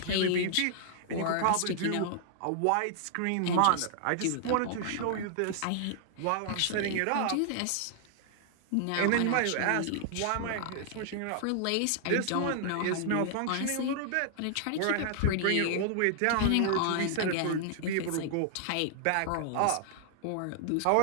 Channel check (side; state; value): both; different; correlation -0.01